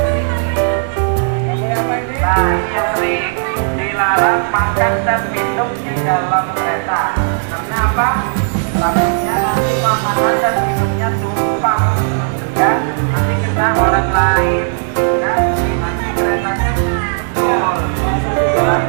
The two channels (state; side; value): silent; left; digital silence